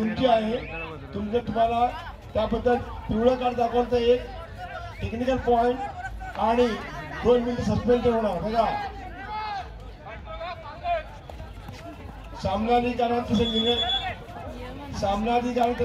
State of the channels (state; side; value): identical; both; correlation 1.00